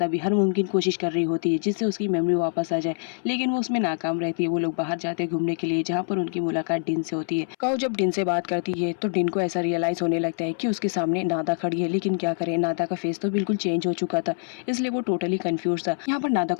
भी हर मुमकिन कोशिश कर रही होती है जिससे उसकी मेमोरी वापस आ जाए, लेकिन वो उसमें नाकाम रहती है। वो लोग बाहर जाते हैं घूमने के लिए, जहाँ पर उनकी मुलाकात डिन से होती है। काऊ जब डिन से बात करती है तो डिन को ऐसा रियलाइज होने लगता है कि उसके सामने नादा खड़ी है, लेकिन क्या करे, नादा का फेस तो बिल्कुल चेंज हो चुका था, इसलिए वो टोटली कंफ्यूज था। यहाँ पर नादा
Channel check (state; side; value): silent; right; 62 dB below the other